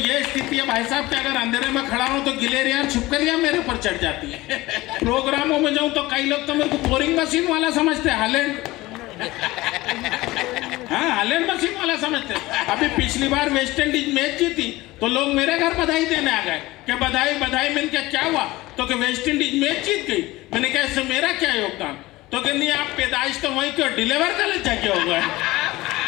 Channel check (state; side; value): quieter; right; 19.2 dB